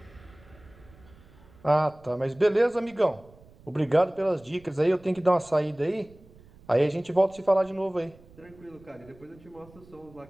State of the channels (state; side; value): noise; right; rumble, 25 dB below the sound